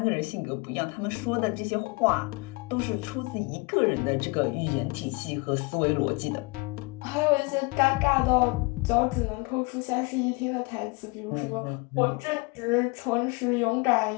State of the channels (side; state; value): right; quieter; 27.0 dB